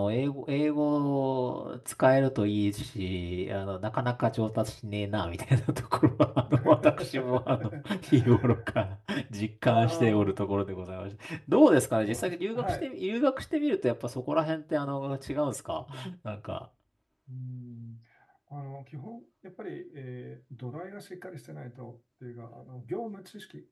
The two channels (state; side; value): identical; both; correlation 1.00